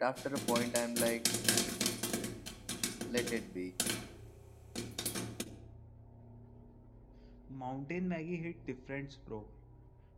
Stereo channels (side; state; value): both; identical; correlation 1.00